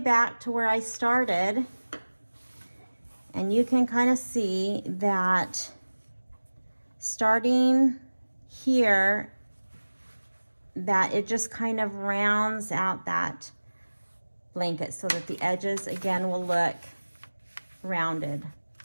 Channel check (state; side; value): inverted; both; correlation -1.00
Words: to where I started, and you can kind of see that starting here, that it just kind of rounds out that blanket so that the edges again will look rounded